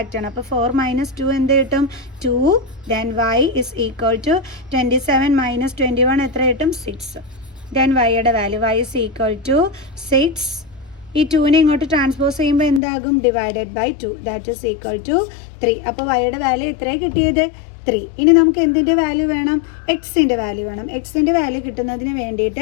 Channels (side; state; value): right; drops out; at 12.8 s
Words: ചെയ്യണം. അപ്പോൾ 4 - 2 എന്ത് കിട്ടും? 2. Then y is equal to 27 - 21 എത്ര കിട്ടും? 6. ദെൻ വൈയുടെ value y is equal to 6. ഈ 2നെ ഇങ്ങോട്ട് ട്രാൻസ്പോസ് ചെയ്യുമ്പോൾ എന്താകും? Divided by 2 that is equal to 3. അപ്പോൾ വൈയുടെ വാല്യൂ എത്രയാണ് കിട്ടിയത്? 3. ഇനി നമുക്ക് എന്തിൻ്റെ വാല്യൂ വേണം? എക്സിൻ്റെ വാല്യൂ വേണം. എക്സിൻ്റെ വാല്യൂ കിട്ടുന്നതിന്